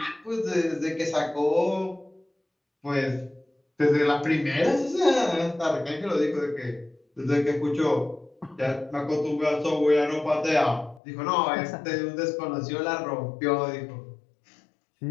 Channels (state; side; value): drops out; right; at 11.0 s